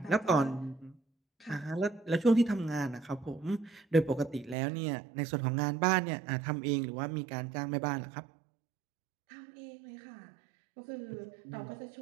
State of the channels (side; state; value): left; drops out; at 4.5 s